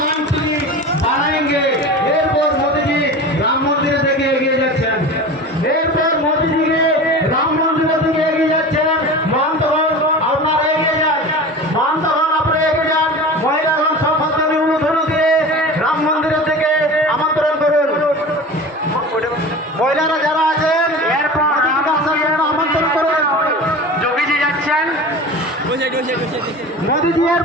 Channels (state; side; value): normal; both; correlation 0.34